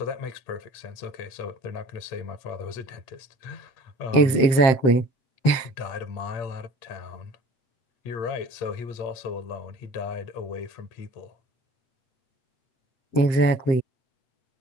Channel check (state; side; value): late; right; 7.6 ms